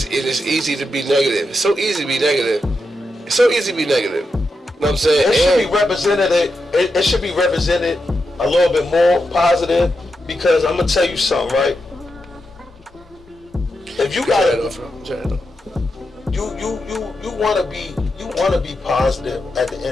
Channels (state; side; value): normal; both; correlation 0.86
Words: easy to be negative. It's so easy to be negative. It's so easy to be negative. You know what I'm saying? It should be represented. It should be represented a little bit more positive, because I'm gonna tell you something, right? If you got you wanna be positive at the